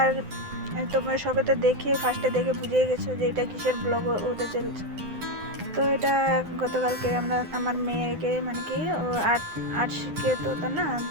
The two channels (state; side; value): late; left; 9.8 ms